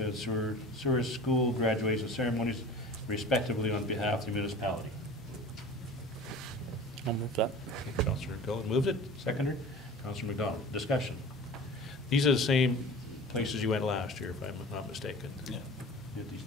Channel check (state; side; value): normal; both; correlation 0.40